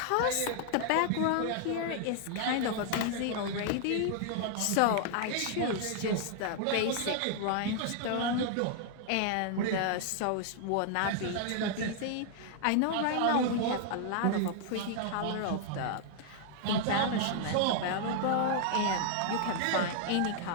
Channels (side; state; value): both; different; correlation 0.00